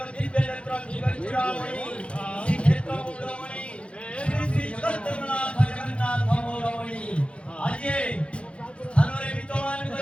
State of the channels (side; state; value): right; late; 0.060 ms